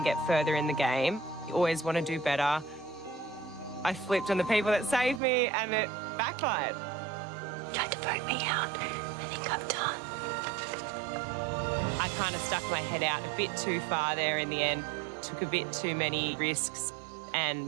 get further in the game. You always want to do better. I flipped on the people that saved me and it backfired. You tried to vote me out. I think I'm done. I kind of stuck my head out a bit too far there in the end, took a bit too many risks,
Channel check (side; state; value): left; drops out; at 5.2 s